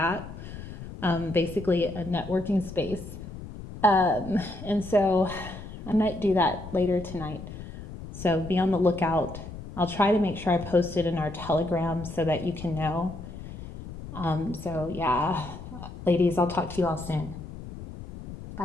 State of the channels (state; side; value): noise; left; rumble, 12 dB below the sound